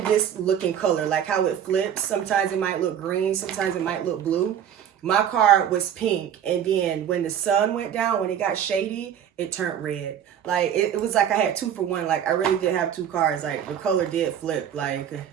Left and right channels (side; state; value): left; quieter; 9.3 dB